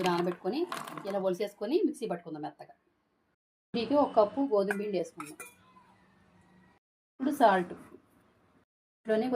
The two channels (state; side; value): identical; both; correlation 1.00